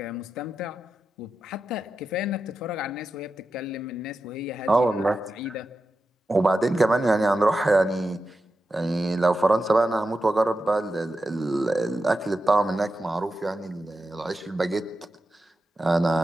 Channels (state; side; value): normal; both; correlation 0.90